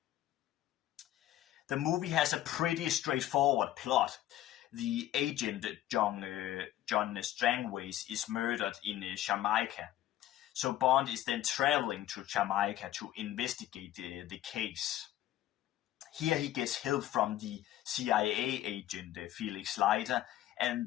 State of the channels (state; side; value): quieter; right; 13.4 dB